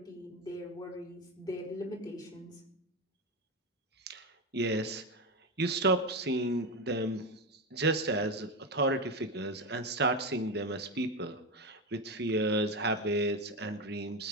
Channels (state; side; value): normal; both; correlation 0.15